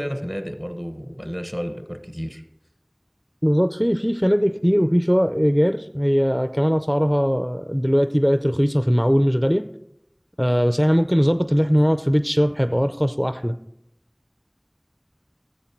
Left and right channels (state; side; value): identical; both; correlation 1.00